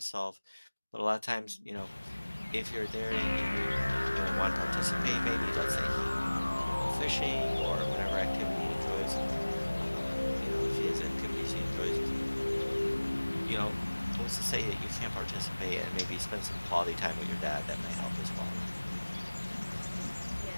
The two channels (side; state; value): both; inverted; correlation -1.00